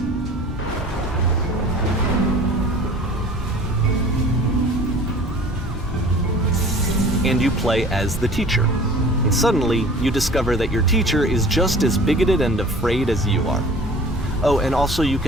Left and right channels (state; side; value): normal; both; correlation 0.45